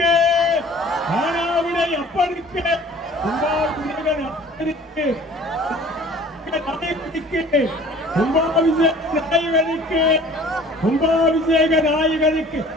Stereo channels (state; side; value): normal; both; correlation 0.49